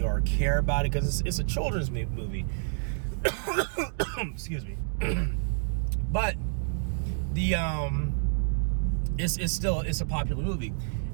or care about it, because it's a children's movie. Excuse me. But the it's a popular movie,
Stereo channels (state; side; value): silent; left; digital silence